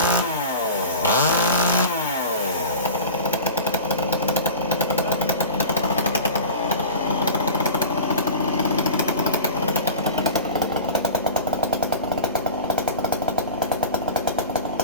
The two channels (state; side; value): inverted; both; correlation -0.34